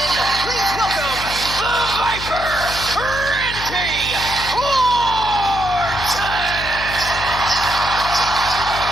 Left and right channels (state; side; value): noise; left; hum, 10 dB below the sound